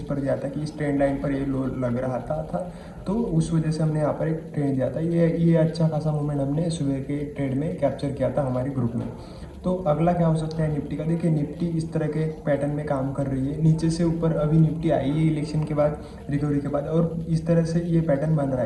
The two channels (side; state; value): both; identical; correlation 1.00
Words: पर दिया था कि इस ट्रेंड लाइन पर ये लो लग रहा था, तो उस वजह से हमने यहाँ पर एक ट्रेड दिया था। ये अच्छा खासा मूवमेंट हमने सुबह के ट्रेड में कैप्चर किया था हमारे ग्रुप में। तो अगला क्या हो सकता है निफ्टी का? देखिए निफ्टी इस तरह के पैटर्न में काम कर रही है, नीचे से ऊपर अभी निफ्टी आई है इलेक्शन के बाद, रिकवरी के बाद, और इस तरह से ये पैटर्न बन रहा